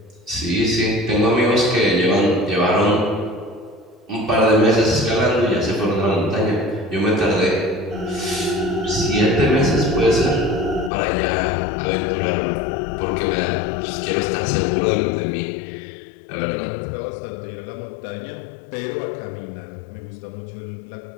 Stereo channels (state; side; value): drops out; right; at 10.9 s